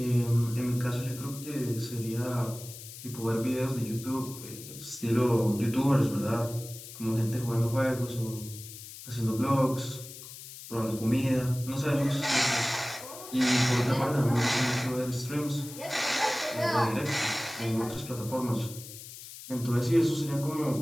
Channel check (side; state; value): left; noise; hiss, 14 dB below the sound